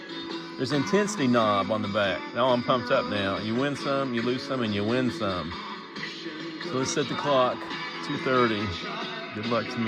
There's an intensity knob on the back. Now I'm pumped up now. You win some, you lose some, and you win some. So let's set the clock, 2:30. Good luck to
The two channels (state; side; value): identical; both; correlation 1.00